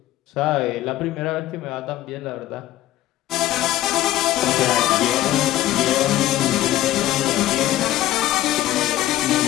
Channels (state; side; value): quieter; right; 14.5 dB